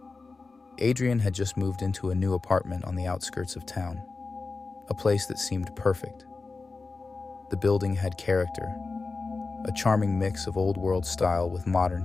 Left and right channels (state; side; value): quieter; right; 4.0 dB